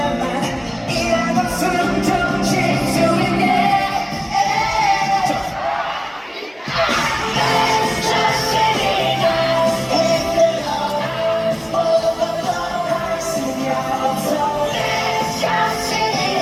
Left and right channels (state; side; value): identical; both; correlation 1.00